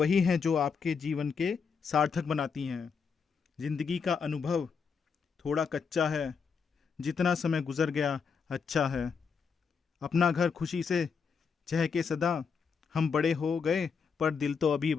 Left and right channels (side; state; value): right; quieter; 5.8 dB